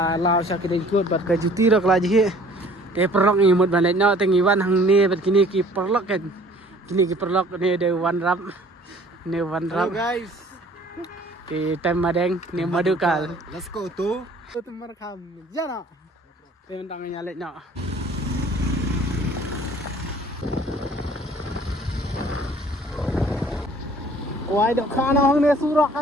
lao sah kiring kut bat ka juti rak la ji ke perlok ni mut balet no tengi wan hang ni bat kini ki perlok kan kini ki perlok ni de wan rap ni wan rap guys. Di time madeng ni madukal. Let's go to. Itu merekam. Jana. Tem tangannya lek nak. Wah, dok kana hang ni surak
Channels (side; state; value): both; normal; correlation 0.52